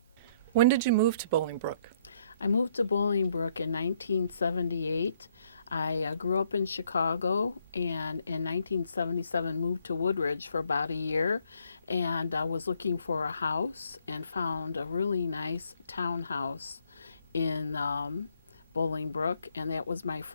When did you move to Bolingbrook? I moved to Bolingbrook in 1978. I grew up in Chicago, and in 1977 moved to Woodridge for about a year, and I was looking for a house and found a really nice townhouse in Bolingbrook, and that was my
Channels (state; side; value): inverted; both; correlation -0.68